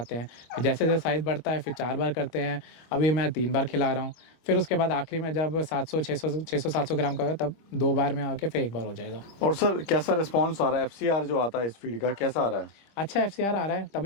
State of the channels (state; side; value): late; right; 25 ms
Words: हैं, जैसे साइज़ बढ़ता है फिर 4 बार करते हैं। अभी मैं 3 बार खिला रहा हूँ। फिर उसके बाद आखिरी में जब 600-700 ग्राम का होगा तब 2 बार में आके फिर 1 बार हो जाएगा। और सर कैसा रिस्पॉन्स आ रहा है, FCR जो आता है इस फीड का कैसा आ रहा है? अच्छा FCR आ रहा है,